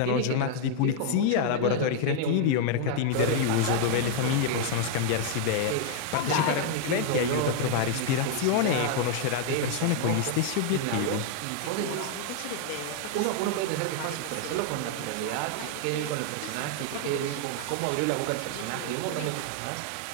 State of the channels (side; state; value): both; different; correlation 0.00